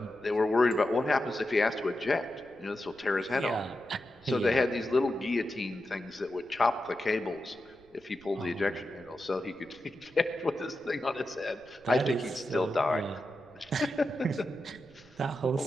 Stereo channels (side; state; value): right; noise; rumble, 28 dB below the sound